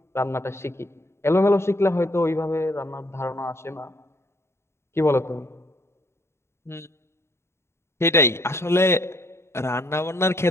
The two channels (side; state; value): right; late; 0.13 ms